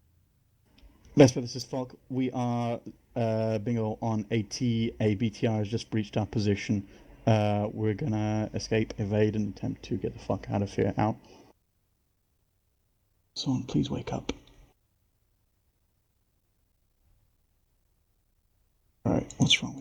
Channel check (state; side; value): identical; both; correlation 1.00